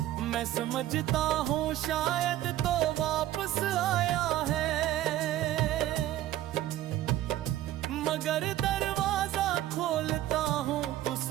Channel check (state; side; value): quieter; left; 13.8 dB